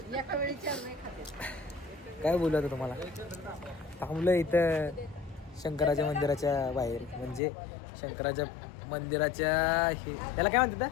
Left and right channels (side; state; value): right; drops out; at 7.4 s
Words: वेळी 4 नाही खाते. काय बोलू आता तुम्हाला. थांबलं इथं शंकराच्या मंदिराच्या बाहेर म्हणजे शंकराच्या मंदिराच्या त्याला काय म्हणतात